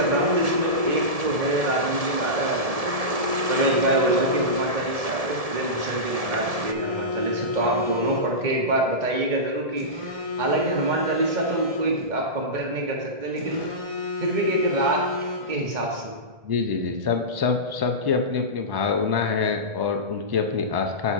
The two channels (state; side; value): late; left; 1.7 ms